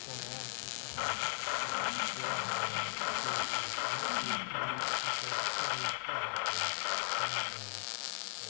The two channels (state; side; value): silent; right; 53 dB below the other